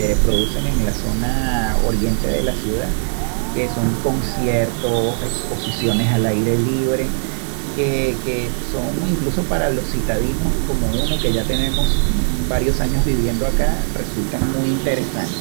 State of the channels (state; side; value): silent; left; digital silence